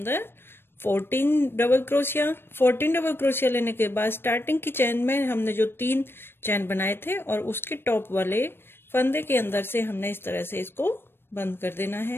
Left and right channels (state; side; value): late; right; 0.11 ms